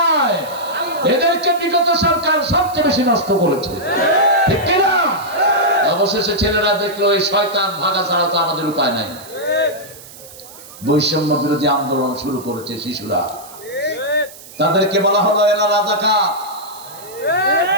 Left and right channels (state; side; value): noise; right; hiss, 18 dB below the sound